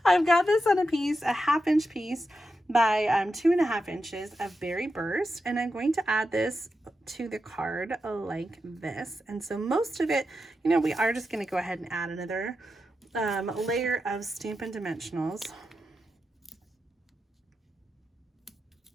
I've got this on a piece, a 1/2 inch piece by 2.5 inches of Berry Burst, and I'm going to add this to the card like this. And so most of it, you know, we are just going to go ahead and add another layer of Stampin' Dimensionals.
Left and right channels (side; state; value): both; normal; correlation 0.88